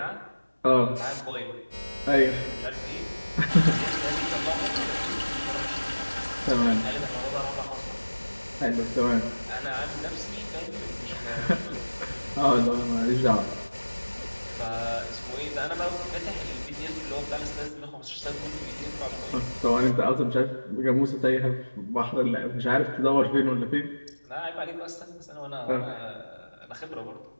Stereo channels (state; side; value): inverted; both; correlation -1.00